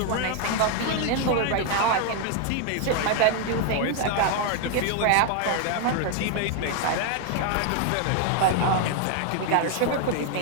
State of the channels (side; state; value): both; different; correlation 0.00